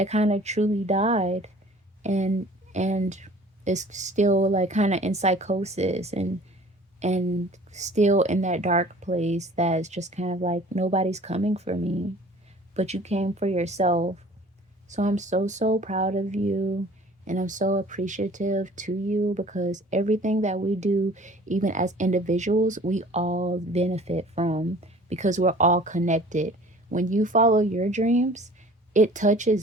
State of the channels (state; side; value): normal; both; correlation 0.48